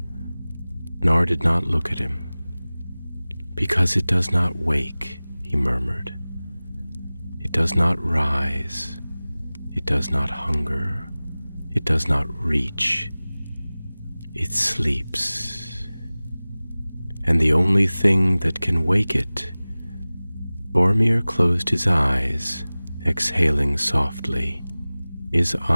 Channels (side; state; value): both; inverted; correlation -0.99